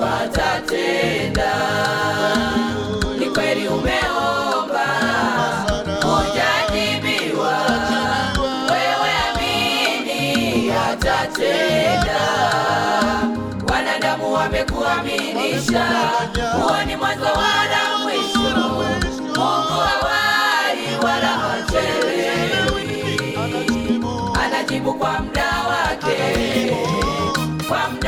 atatenda. Ni kweli umeomba hujajibiwa, wewe amini atatenda. Wanadamu wamekuaminisha, huo ni mwanzo wala mwisho. Mungu hawai wala hachelewi, anajibu kwa muda wake, kwa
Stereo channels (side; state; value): both; identical; correlation 1.00